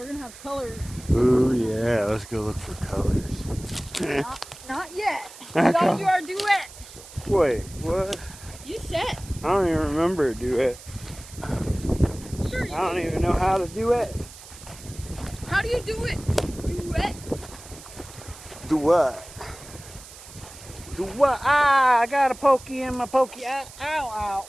going to have colors. Ooh, yeah. Let's go look for colors. Not yet. We got to do our duet. Wait, what? You said. I don't even remember a duet. Sure you I don't even know how to do it. How do you do it? Duet. Do what? Do what? Ah, I got a pokey in my pokey. Ow, ow.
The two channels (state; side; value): noise; right; hiss, 17 dB below the sound